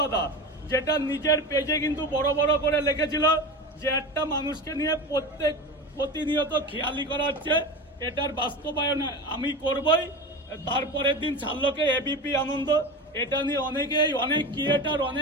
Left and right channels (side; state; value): both; normal; correlation 0.27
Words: দাদা, যেটা নিজের পেজে কিন্তু বড় বড় করে লিখেছিল যে একটা মানুষকে নিয়ে প্রতিনিয়ত খেয়ালি করা হচ্ছে, এটার বাস্তবায়ন আমি করবই। তারপরের দিন ছাড়লোকে এবিপি আনন্দ, এটা নিয়ে অনেকেই, অনেক ক্রিয়েটার,